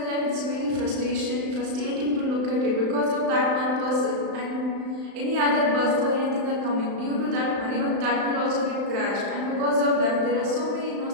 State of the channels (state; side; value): late; left; 35 ms